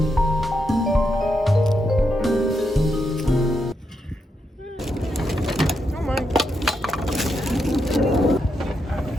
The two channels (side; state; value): both; normal; correlation 0.83